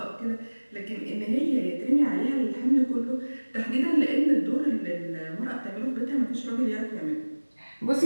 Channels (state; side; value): inverted; both; correlation -1.00